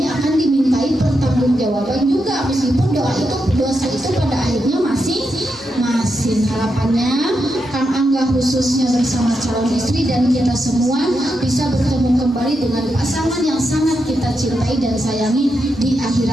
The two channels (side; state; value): both; normal; correlation 0.85